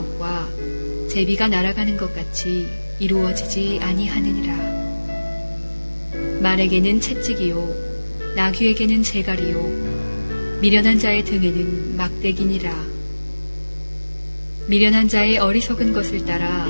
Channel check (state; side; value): inverted; both; correlation -1.00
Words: 제비가 날아가는 것 같이 이루어지지 아니하느니라. 말에게는 채찍이요 나귀에게는 재갈이요 미련한 자의 등에는 막대기니라. 미련한 자의 어리석은 것을 따라